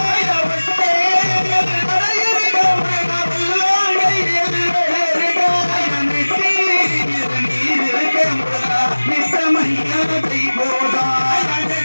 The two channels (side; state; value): both; inverted; correlation -1.00